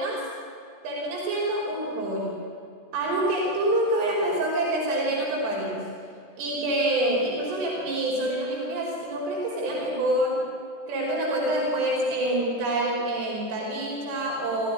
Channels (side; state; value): left; late; 13 ms